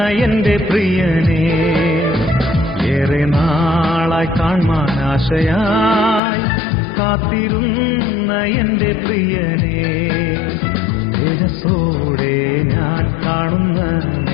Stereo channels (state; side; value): drops out; right; at 6.2 s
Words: എന്റെ പ്രിയനെ ഏറെ നാളായി കാണാൻ ആശയായി കാത്തിരുന്ന എന്റെ പ്രിയനെ തേജസ്സോടെ ഞാൻ കാണുന്ന